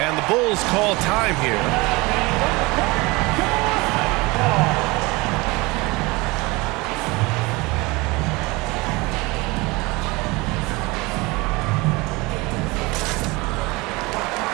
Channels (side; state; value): left; quieter; 24.0 dB